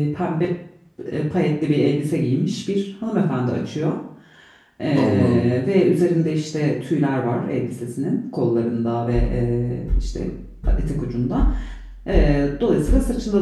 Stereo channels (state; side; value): identical; both; correlation 1.00